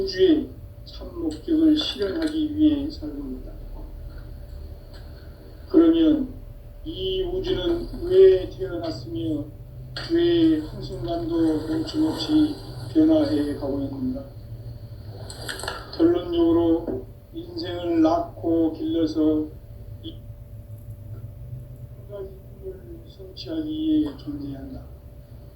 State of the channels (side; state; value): both; identical; correlation 1.00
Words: 참 목적을 실현하기 위해 살고 있다. 그러면 이 우주는 왜 태어났으며 왜 한순간도 멈춤없이 변화해 가고 있는가? 결론적으로 인생을 낳고 길러서 이 한 가지 꿈을 성취하기 위해 존재한다.